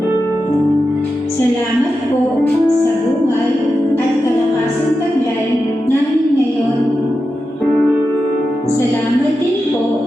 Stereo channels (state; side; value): normal; both; correlation 0.90